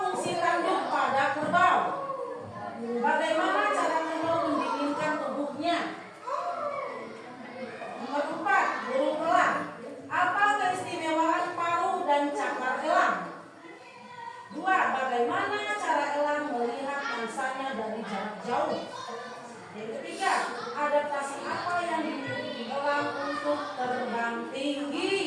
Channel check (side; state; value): both; identical; correlation 1.00